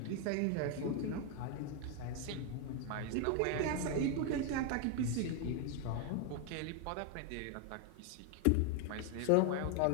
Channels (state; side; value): different; both; correlation 0.01